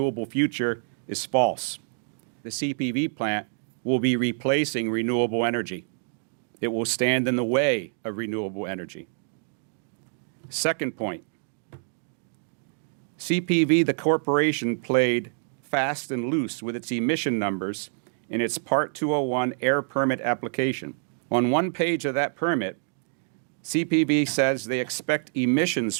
future is false. The CPV plant will be replacing renewable energy. It will stand in the way of renewable energy. Second point, CPV, the corporation, played fast and loose with its emission numbers in its Part 201 air permit application. On one page of that permit, CPV says they expect emissions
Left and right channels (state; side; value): silent; left; digital silence